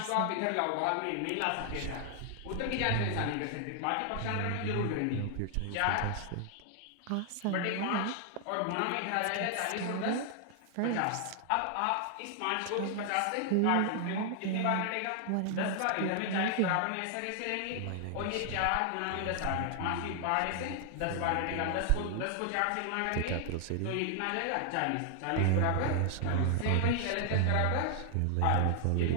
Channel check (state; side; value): different; both; correlation 0.00